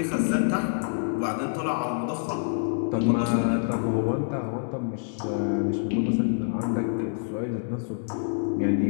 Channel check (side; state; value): right; silent; digital silence